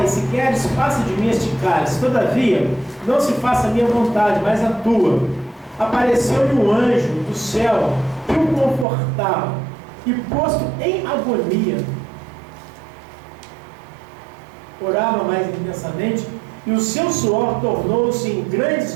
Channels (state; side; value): drops out; left; at 8.8 s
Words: se queres, passa de mim este cálice, todavia, não se faça a minha vontade, mas a tua. Apareceu-lhe um anjo do céu, que o confortava, e posto em agonia, orava mais intensamente, e o seu suor tornou-se em